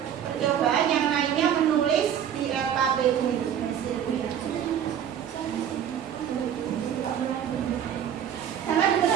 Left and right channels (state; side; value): quieter; left; 9.3 dB